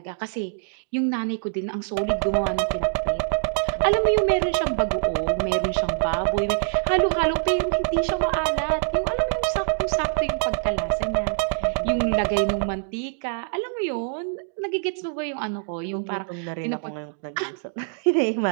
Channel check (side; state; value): left; silent; digital silence